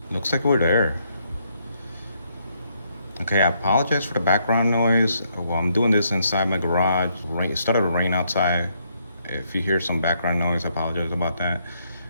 Looks like we're there. Okay, I apologize for the background noise. Well, I'm doing this inside my garage. It started to rain outside. If you hear some background noise, I apologize about that.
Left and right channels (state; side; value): inverted; both; correlation -0.74